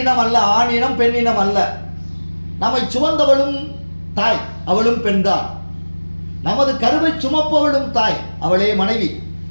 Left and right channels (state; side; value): inverted; both; correlation -1.00